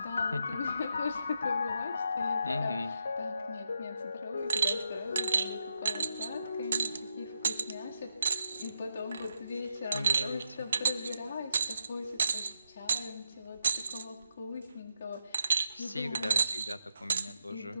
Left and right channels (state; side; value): inverted; both; correlation -0.83